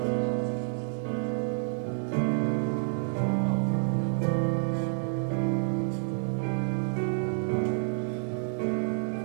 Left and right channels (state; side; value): silent; left; 58 dB below the other